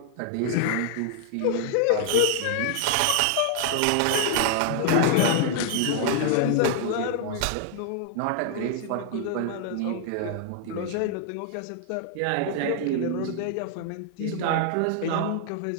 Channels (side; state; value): both; different; correlation 0.00